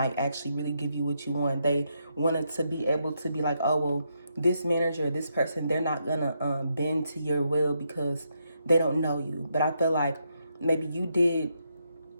actually really give you what you want. They wanted to be able to be like, oh, well, this manager, this person, they're not going to bend to your will because they don't know you. But I feel like maybe you did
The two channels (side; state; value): both; inverted; correlation -0.79